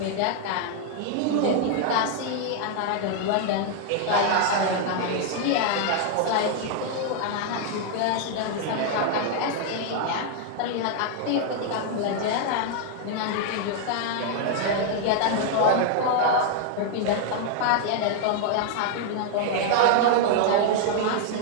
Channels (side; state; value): both; different; correlation 0.00